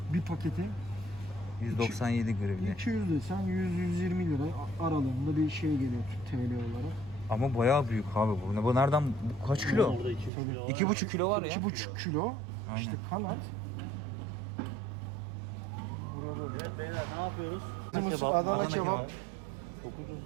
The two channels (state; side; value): drops out; left; at 10.3 s